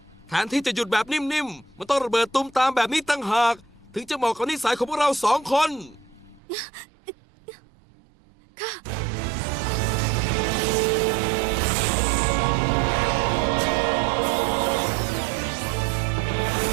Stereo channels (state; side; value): drops out; left; at 6.4 s